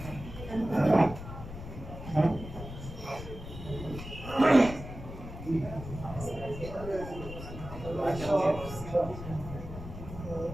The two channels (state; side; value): noise; left; rumble, 11 dB below the sound